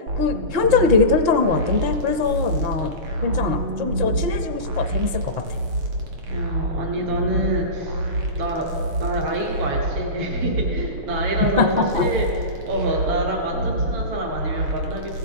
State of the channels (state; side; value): late; left; 6.5 ms